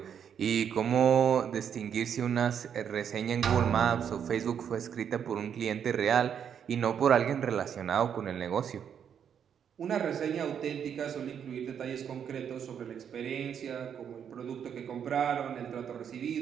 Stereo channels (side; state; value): left; quieter; 8.2 dB